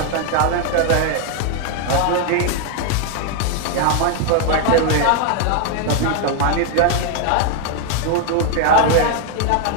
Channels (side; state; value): both; different; correlation 0.00